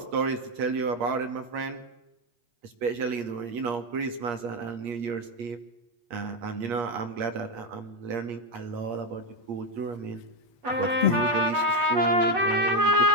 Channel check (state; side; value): late; left; 8.5 ms